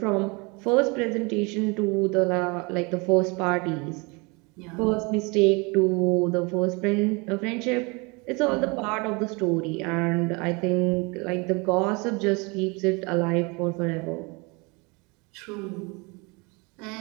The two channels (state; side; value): quieter; left; 28.6 dB